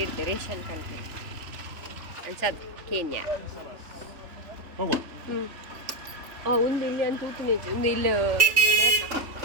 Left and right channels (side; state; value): left; late; 3.4 ms